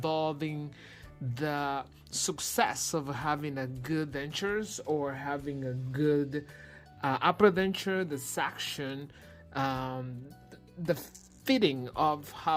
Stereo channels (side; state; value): both; identical; correlation 1.00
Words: the success of having a good dentures, or having a good upper denture, the section, the fitting of